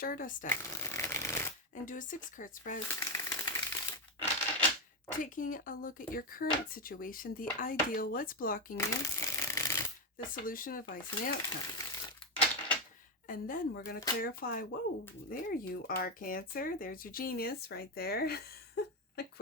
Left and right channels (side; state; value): both; normal; correlation 0.08